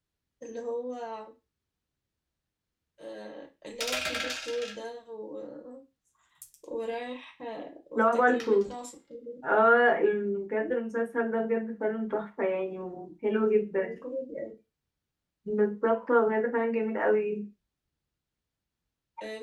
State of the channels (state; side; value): identical; both; correlation 1.00